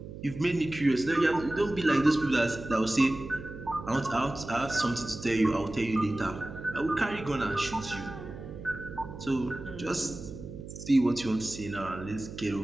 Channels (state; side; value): noise; right; hum, 12 dB below the sound